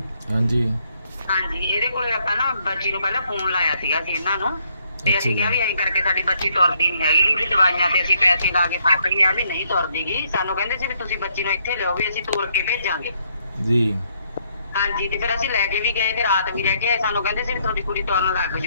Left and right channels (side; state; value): both; inverted; correlation -0.71